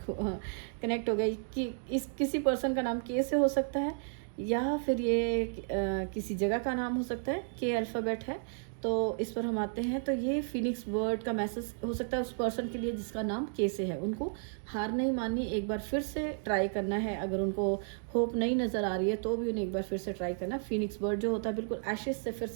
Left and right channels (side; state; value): left; silent; digital silence